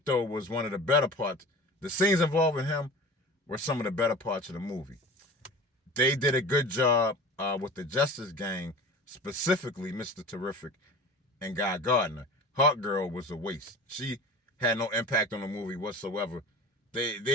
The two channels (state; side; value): normal; both; correlation 0.37